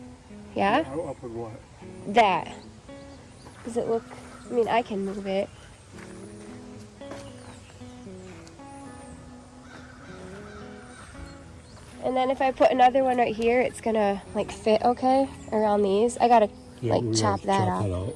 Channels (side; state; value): both; identical; correlation 1.00